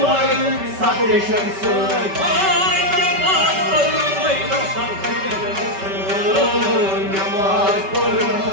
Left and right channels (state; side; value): late; left; 5.2 ms